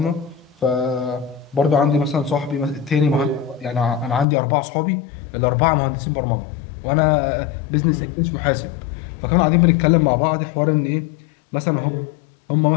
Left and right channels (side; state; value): right; drops out; at 4.2 s